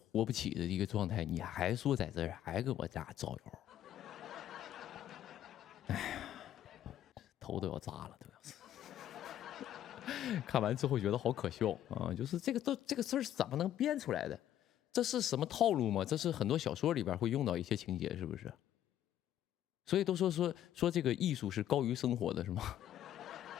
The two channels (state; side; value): quieter; right; 11.6 dB